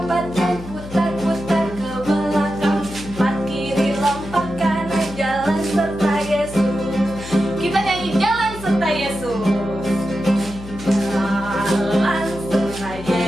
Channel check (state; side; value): noise; left; hum, 13 dB below the sound